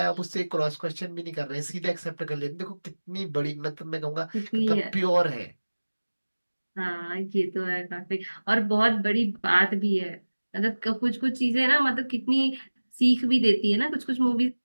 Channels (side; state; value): both; inverted; correlation -1.00